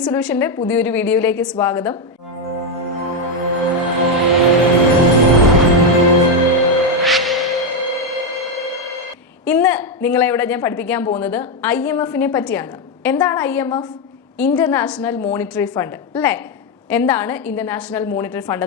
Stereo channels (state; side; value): normal; both; correlation 0.05